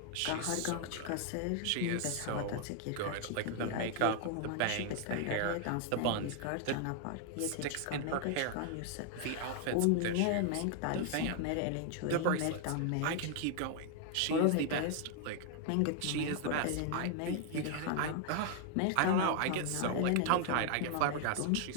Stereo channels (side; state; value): both; different; correlation 0.00